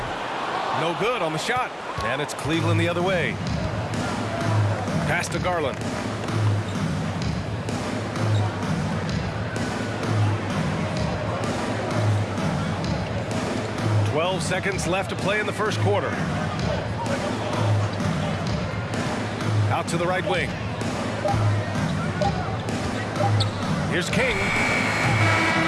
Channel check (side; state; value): both; identical; correlation 1.00